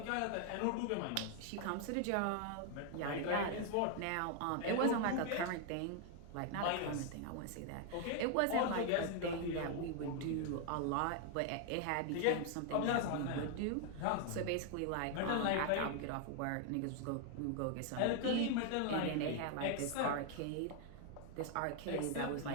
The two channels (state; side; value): different; both; correlation 0.00